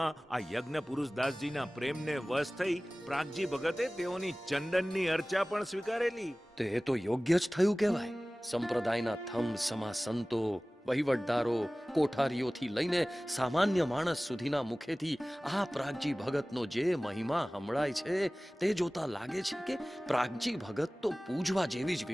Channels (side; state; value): both; normal; correlation 0.98